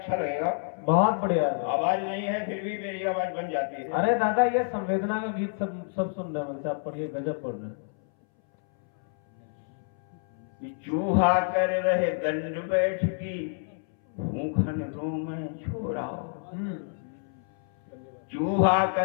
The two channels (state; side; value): silent; right; 59 dB below the other